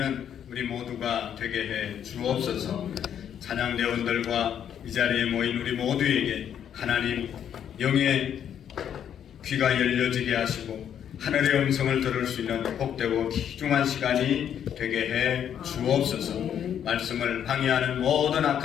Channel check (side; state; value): right; quieter; 9.2 dB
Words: 우리 모두가 되게 해 주옵소서. 찬양대원들과 이 자리에 모인 우리 모두에게 하나님 영의 귀가 열려지게 하시고 하늘의 음성을 들을 수 있는 복되고 귀중한 시간이 되게 해 주옵소서. 말씀을 방해하는 모든